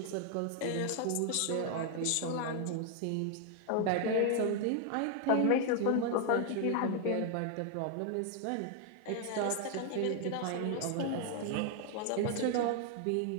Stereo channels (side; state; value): both; different; correlation 0.00